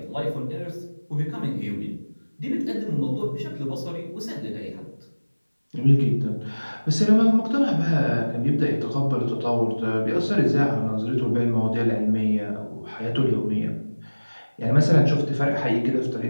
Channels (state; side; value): inverted; both; correlation -1.00